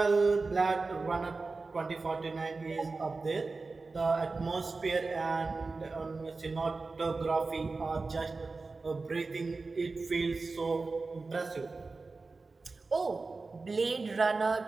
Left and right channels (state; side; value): quieter; left; 3.9 dB